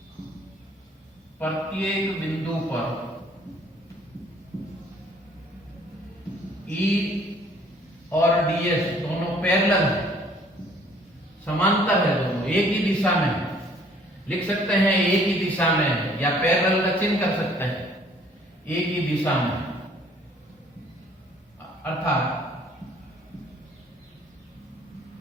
प्रत्येक बिंदु पर E और ds दोनों पैरेलल है, समांतर है, दोनों एक ही दिशा में है। लिख सकते हैं एक ही दिशा में है, या पैरेलल का चिन्ह कर सकते हैं, एक ही दिशा में, अर्थात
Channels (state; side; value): normal; both; correlation 0.58